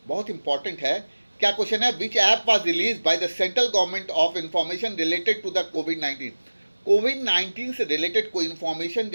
बहुत इंपॉर्टेंट है। क्या क्वेश्चन है, विच app was release by the central government of information related to the कोविड-19। कोविड-19 से रिलेटेड कोई इंफॉर्मेशन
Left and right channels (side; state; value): both; inverted; correlation -1.00